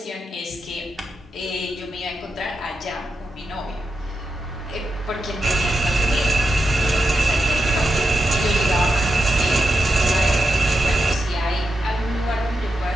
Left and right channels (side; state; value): both; normal; correlation 0.87